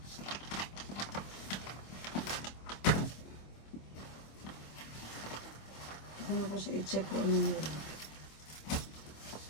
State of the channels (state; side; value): late; right; 26 ms